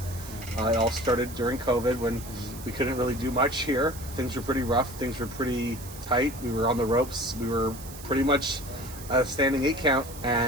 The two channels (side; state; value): right; noise; hiss, 15 dB below the sound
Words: It all started during COVID, when we couldn't really do much here. Things were pretty rough. Things were pretty tight. We were on the ropes. We were pretty much a standing 8 count.